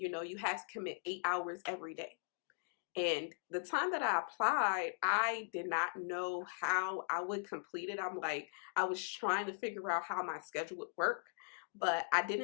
had to commit 8 hours every day. And the time that I applied, I did not know how I would complete it. I was trying to figure out how my schedule would work, but I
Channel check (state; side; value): silent; right; digital silence